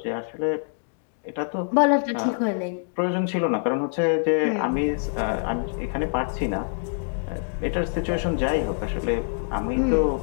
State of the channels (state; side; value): silent; right; digital silence